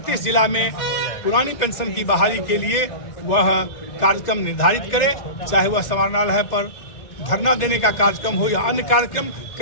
जिला में पुरानी पेंशन की बहाली के लिए वह कार्यक्रम निर्धारित करे, चाहे वह समाहरणालय पर धरना देने का कार्यक्रम हो या अन्य कार्यक्रम।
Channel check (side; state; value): right; late; 2.0 ms